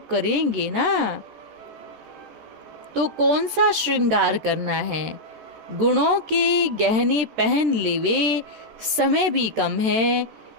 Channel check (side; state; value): left; late; 13 ms